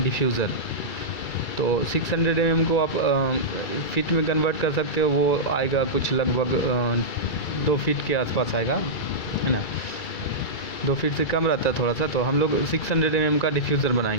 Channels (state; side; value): late; right; 2.3 ms